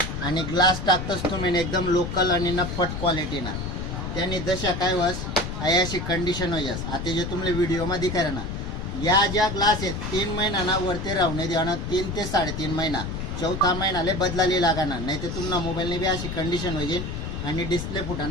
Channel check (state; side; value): noise; left; rumble, 5 dB below the sound